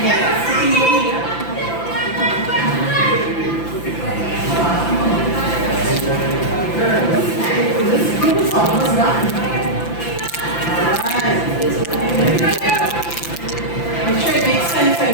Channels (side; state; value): right; late; 5.9 ms